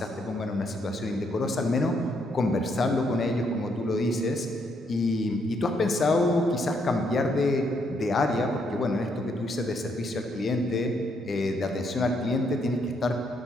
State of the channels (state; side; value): normal; both; correlation 0.74